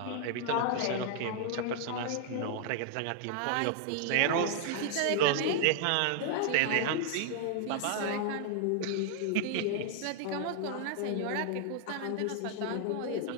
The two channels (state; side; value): different; both; correlation 0.00